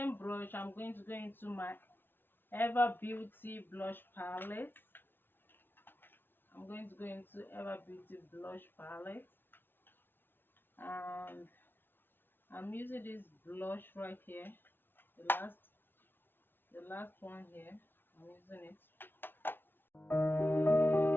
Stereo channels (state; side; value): late; right; 0.10 ms